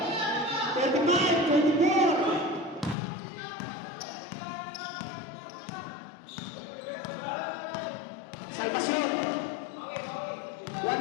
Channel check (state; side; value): drops out; right; at 3.0 s